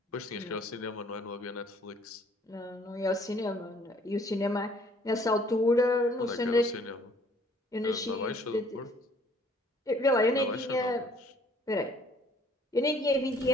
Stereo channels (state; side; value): normal; both; correlation 0.59